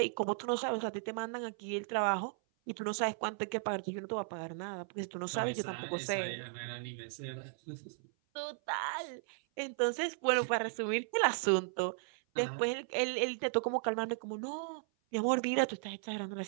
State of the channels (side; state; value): left; silent; 54 dB below the other